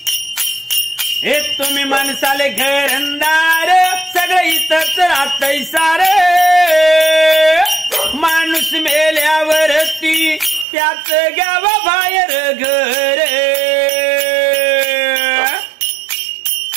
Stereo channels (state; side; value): drops out; left; at 10.7 s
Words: हे तुम्ही माणसाले घरंदार सगळं इथंच राहतंय सारे माणूस मेल्यावरती त्याच घ्यावा बाहेर घर